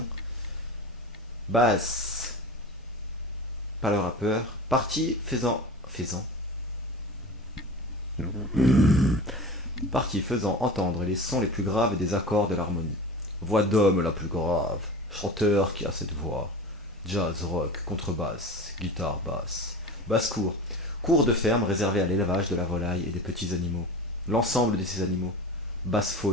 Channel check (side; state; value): both; normal; correlation 0.33